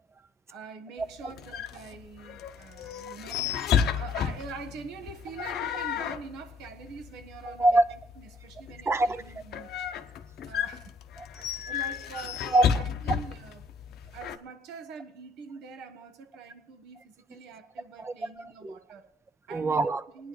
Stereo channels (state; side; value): normal; both; correlation 0.63